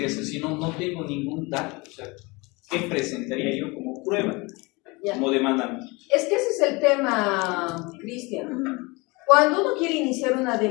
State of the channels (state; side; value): quieter; right; 25.6 dB